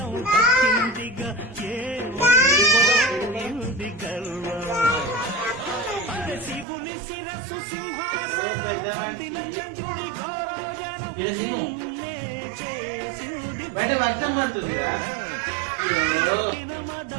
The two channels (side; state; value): left; drops out; at 6.7 s